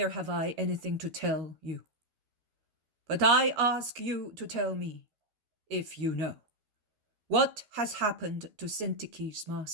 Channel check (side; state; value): left; late; 13 ms